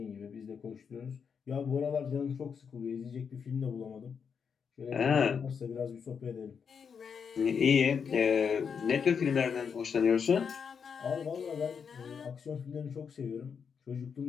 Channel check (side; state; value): right; quieter; 6.5 dB